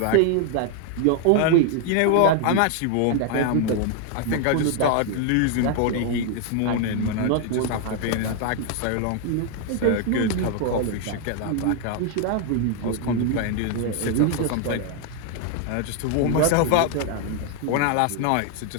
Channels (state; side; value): different; both; correlation 0.00